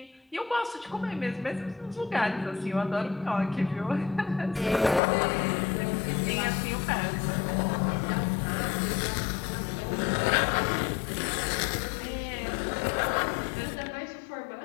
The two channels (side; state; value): right; drops out; at 5.0 s